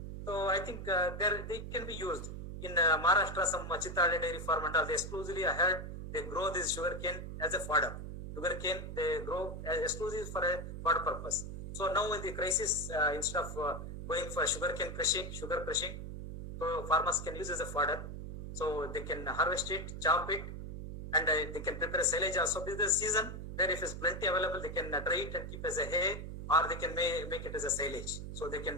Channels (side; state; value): right; noise; hum, 7 dB below the sound